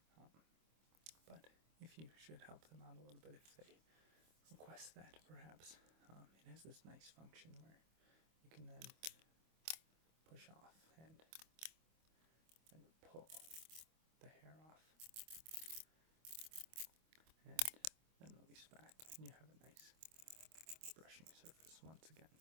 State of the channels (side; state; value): left; late; 25 ms